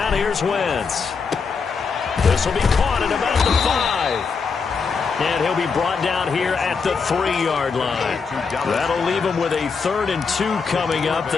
here's Wentz. This will be caught at about the 5. And he'll be brought down here at the 3-yard line. That'll leave him with a 3rd and 2 coming up.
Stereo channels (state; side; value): quieter; right; 5.3 dB